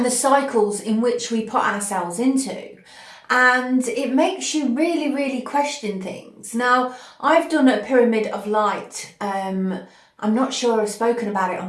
the cycles in which we put ourselves into. And it makes you really, really question things. Now, I've done a pyramid of light. I'm not sure I've spoken about it on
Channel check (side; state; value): both; identical; correlation 1.00